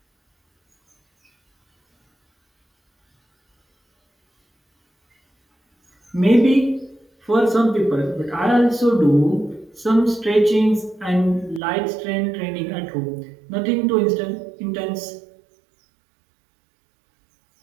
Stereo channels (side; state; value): left; drops out; at 11.6 s